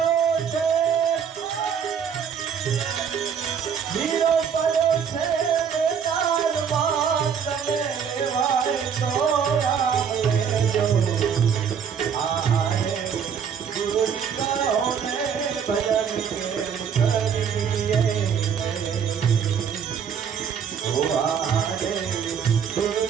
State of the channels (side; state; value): left; quieter; 7.3 dB